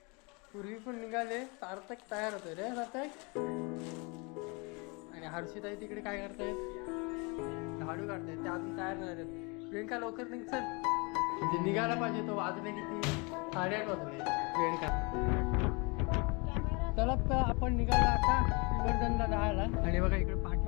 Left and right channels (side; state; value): right; quieter; 30.0 dB